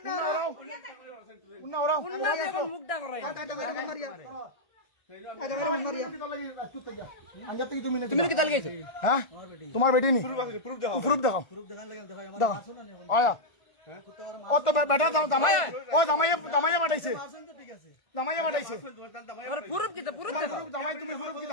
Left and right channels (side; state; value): right; late; 1.5 ms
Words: রা উন্না দেবন মুখটা করাই তুমি কি তাল গেছে হ্যাঁ তোমার বেটি নি প্রুফ দেখাও আয়া ও তো বেটা জামাই ও জামাইয়ে পাঠাইছে জামাইয়ে পাঠাইছে প্রুফ কি তো প্রুফ দেখো জামাই তুমি প্রুফ